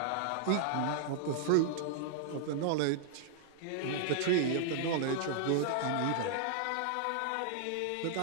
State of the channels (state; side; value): different; both; correlation -0.01